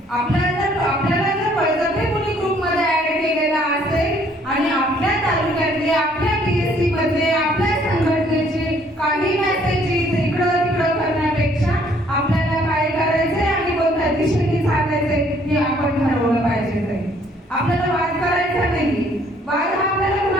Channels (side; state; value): both; normal; correlation 0.63